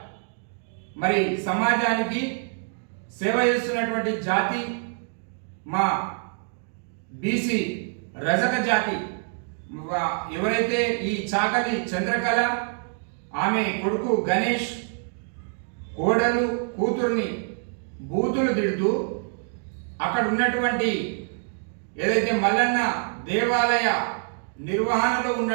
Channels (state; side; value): silent; left; 56 dB below the other